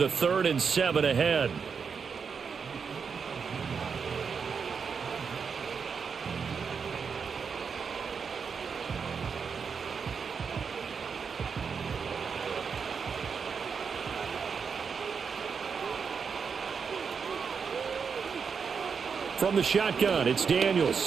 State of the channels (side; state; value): left; quieter; 6.0 dB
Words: a 3rd and 7 ahead. From the shotgun, it's